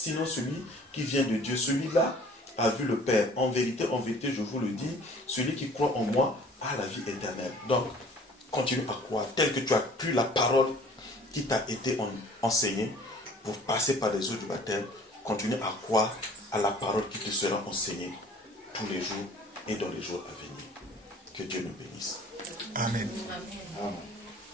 celui qui vient de Dieu. Celui-là a vu le Père. En vérité, je vous le dis, celui qui croit en moi a la vie éternelle. Donc, continue à croire, tel que tu as pris la parole qui t'a été enseignée pour passer par les eaux du baptême. Continue à croire à la parole qui te sera enseignée tous les jours et dans les jours à venir. Que Dieu nous bénisse. Amen. Amen.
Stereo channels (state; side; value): normal; both; correlation 0.50